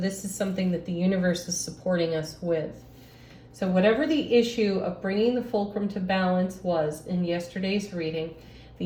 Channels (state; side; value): identical; both; correlation 1.00